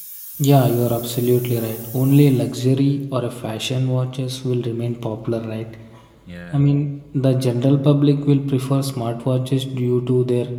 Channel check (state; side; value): identical; both; correlation 1.00